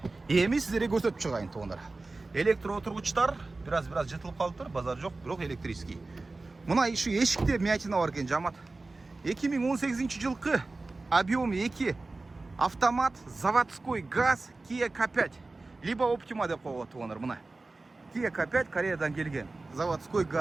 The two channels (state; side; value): quieter; left; 3.4 dB